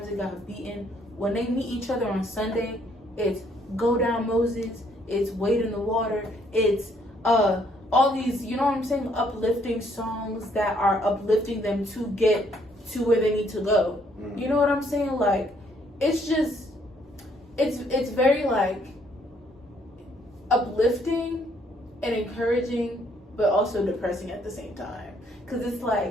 they got beaten, when they meet each other on Sunday, it's Go Down Moses, it's Wade in the Water, it's all these, you know what I'm saying, uplifting songs that are uplifting them to get to where they need to go. You know what I'm saying? It's just, it's very uplifting and encouraging, but also depressing at the same time. Because it's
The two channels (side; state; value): both; normal; correlation 0.67